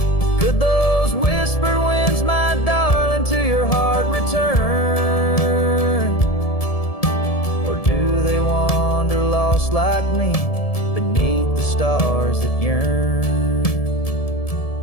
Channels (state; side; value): late; right; 1.7 ms